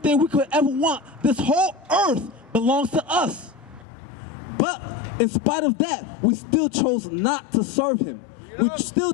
we could ever want. This whole earth belongs to us. But in spite of that, we still chose not to serve him. We still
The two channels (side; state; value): right; drops out; at 3.9 s